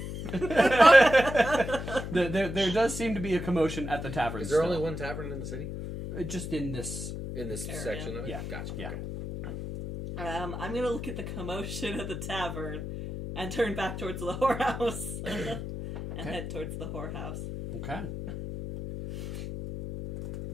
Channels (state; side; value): noise; left; hum, 6 dB below the sound